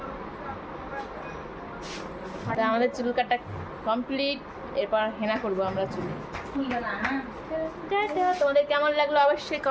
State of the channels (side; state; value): both; identical; correlation 1.00